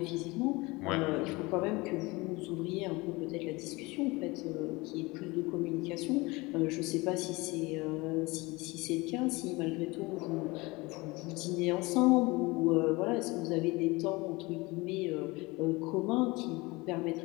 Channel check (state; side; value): quieter; right; 23.5 dB